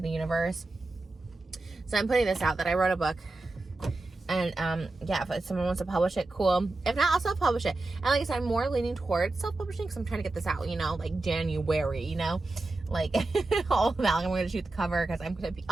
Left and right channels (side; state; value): left; quieter; 3.1 dB